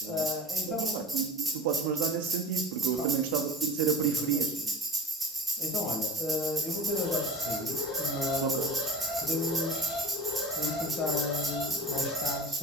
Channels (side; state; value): both; normal; correlation 0.35